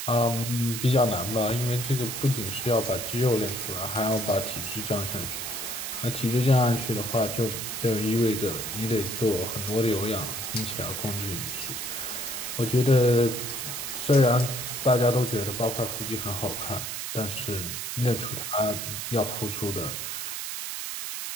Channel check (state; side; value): noise; right; hiss, 5 dB below the sound